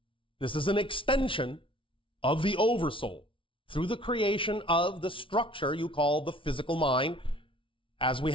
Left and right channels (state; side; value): late; right; 0.25 ms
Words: This is an extension of the oversoul through the creation of the structure you call the physical mind, as we